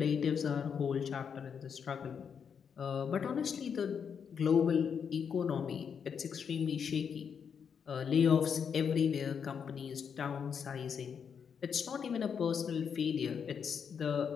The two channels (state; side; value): quieter; right; 7.0 dB